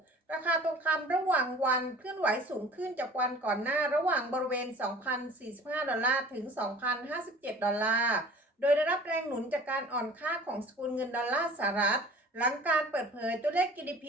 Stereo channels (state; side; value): normal; both; correlation 0.45